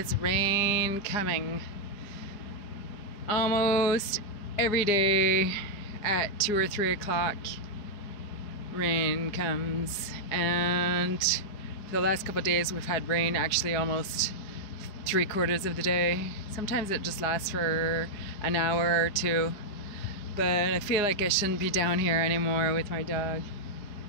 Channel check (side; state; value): right; late; 5.0 ms